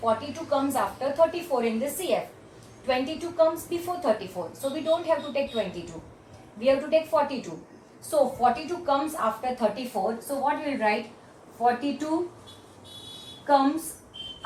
42 comes after 34 in this CF. 22 comes before 34. So we don't have to take 22. We have to take 42. So 42 comes after 34. So what we will write? 42 comes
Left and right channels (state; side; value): identical; both; correlation 1.00